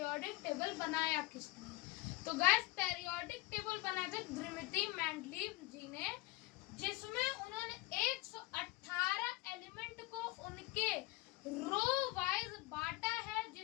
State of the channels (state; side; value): quieter; right; 20.2 dB